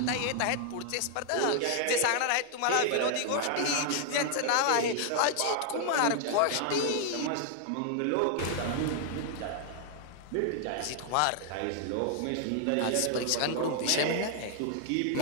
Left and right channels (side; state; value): both; different; correlation 0.00